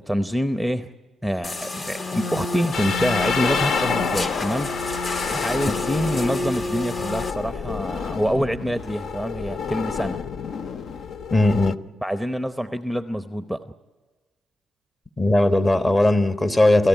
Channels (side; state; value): both; normal; correlation 0.91